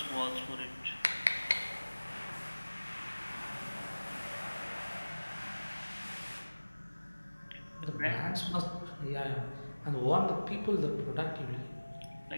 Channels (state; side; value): inverted; both; correlation -1.00